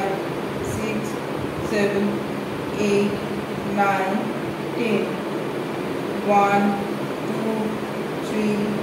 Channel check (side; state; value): both; identical; correlation 1.00